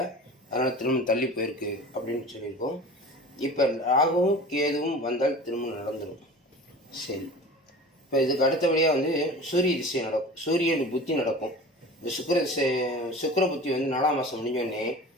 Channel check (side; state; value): both; normal; correlation 0.37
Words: அதனால் திரும்ப தள்ளி போயிருக்கு அப்படின்னு சொல்லியிருக்கோம். இப்போ ராகுவும் கேதுவும் வந்தால் திருமணம் நடந்துடும். சரி, இப்போ இதுக்கு அடுத்தபடியாக வந்து சூரிய திசை நடக்கும், சூரியன் புத்தி நடக்கும். இந்த சுக்கிர புத்தி வந்து 4ஆம் மாதம் முடிஞ்சோடனே